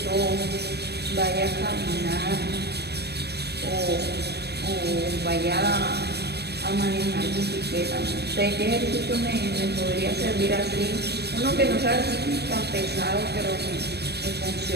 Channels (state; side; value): late; left; 0.48 ms